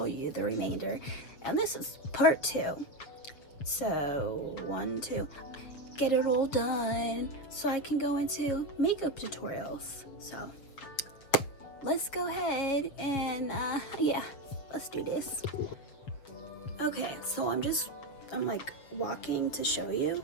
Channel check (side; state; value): right; late; 7.0 ms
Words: you the remainder. And this is part 2. So, 1, 2. Get it all done so I can go into makeup tutorials. So, let's go ahead and let's do this. Okay, so I'm like walking to show you.